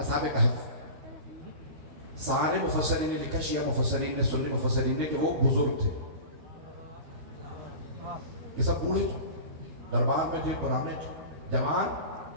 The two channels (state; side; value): late; left; 13 ms